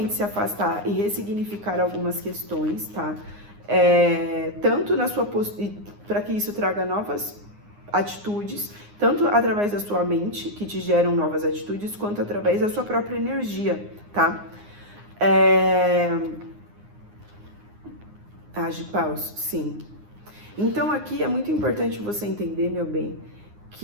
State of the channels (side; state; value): left; late; 9.7 ms